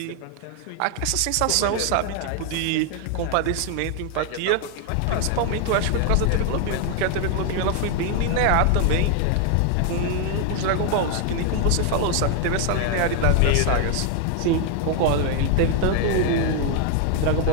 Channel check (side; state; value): both; different; correlation 0.00